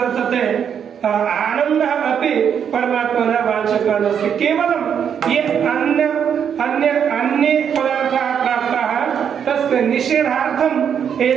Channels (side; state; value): left; quieter; 8.0 dB